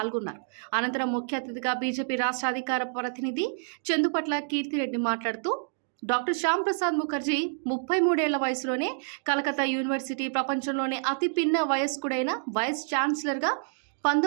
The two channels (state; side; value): silent; left; digital silence